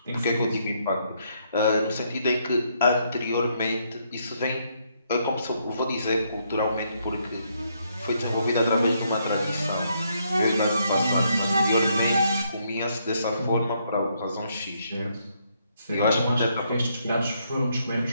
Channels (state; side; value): inverted; both; correlation -0.73